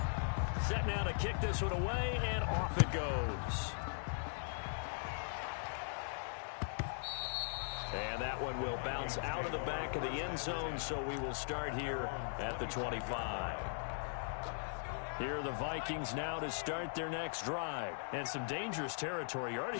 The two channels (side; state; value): right; silent; digital silence